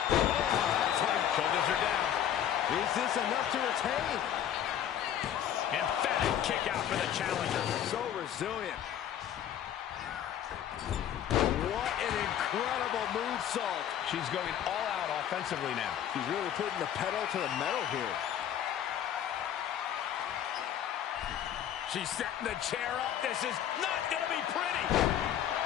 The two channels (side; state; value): right; quieter; 10.2 dB